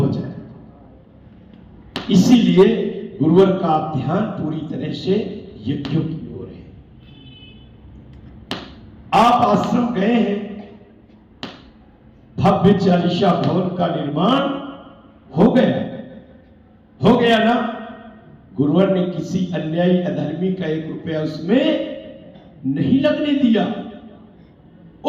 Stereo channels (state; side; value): identical; both; correlation 1.00